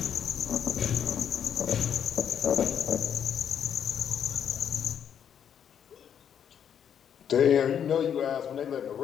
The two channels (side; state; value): right; quieter; 8.6 dB